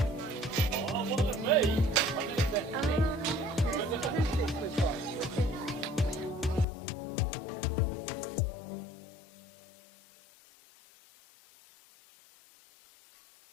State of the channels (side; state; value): right; drops out; at 6.7 s